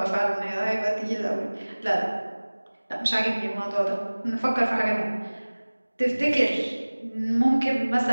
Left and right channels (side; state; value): both; inverted; correlation -1.00